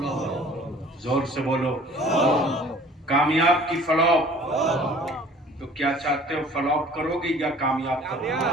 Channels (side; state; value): both; normal; correlation 0.50